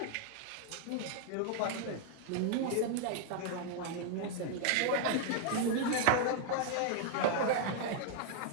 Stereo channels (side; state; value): both; different; correlation 0.00